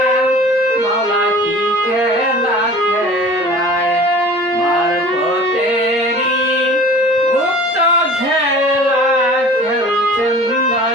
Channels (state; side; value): normal; both; correlation 0.44